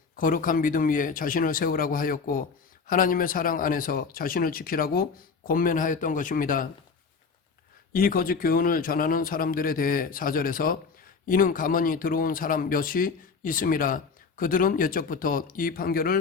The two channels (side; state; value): right; quieter; 5.2 dB